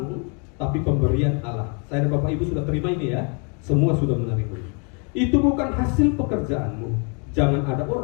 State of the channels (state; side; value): quieter; right; 36.4 dB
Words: tapi pemberian Allah. Saya dan Bapak Ibu sudah terima ini ya, semua sudah menerima. Itu bukan hasil pekerjaanmu. Jangan ada